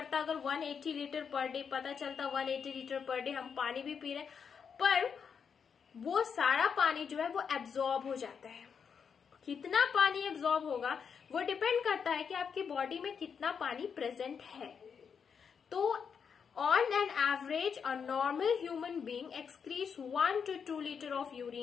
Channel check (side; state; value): right; quieter; 6.6 dB